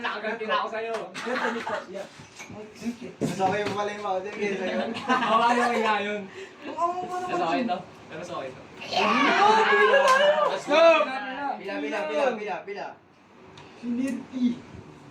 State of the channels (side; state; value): both; identical; correlation 1.00